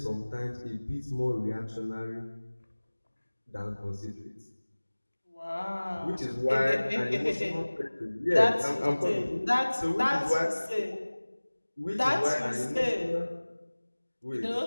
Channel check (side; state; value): both; inverted; correlation -1.00